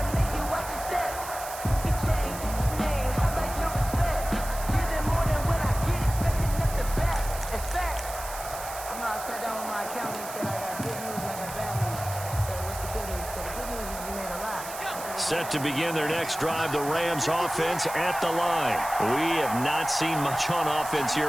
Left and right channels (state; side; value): noise; right; hiss, 11 dB below the sound